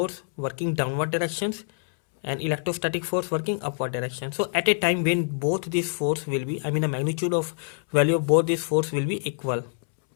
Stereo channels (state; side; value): silent; right; 61 dB below the other